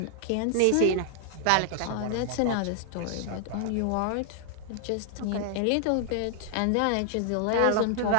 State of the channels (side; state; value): both; different; correlation 0.00